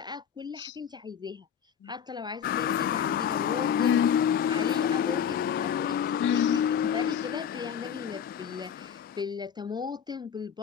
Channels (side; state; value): right; quieter; 8.3 dB